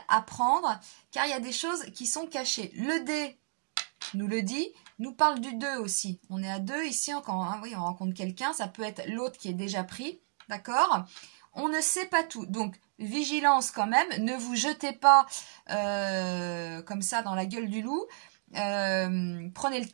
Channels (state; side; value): silent; left; digital silence